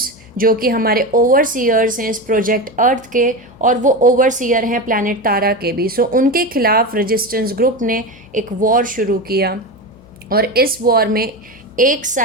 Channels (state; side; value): noise; left; hum, 25 dB below the sound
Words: जो कि हमारे ओवरसीयर्स हैं इस प्रोजेक्ट अर्थ के, और वो ओवरसीयर हैं प्लैनेट तारा के भी। सो उनके खिलाफ रेजिस्टेंस ग्रुप ने एक वॉर शुरू किया और इस वॉर में एक